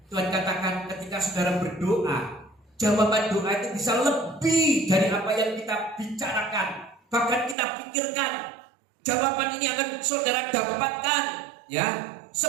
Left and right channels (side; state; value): left; drops out; at 7.6 s